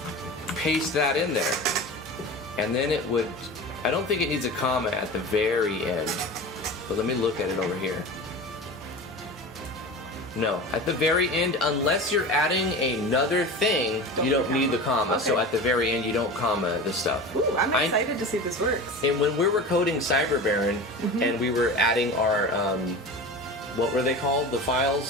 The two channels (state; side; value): normal; both; correlation 0.32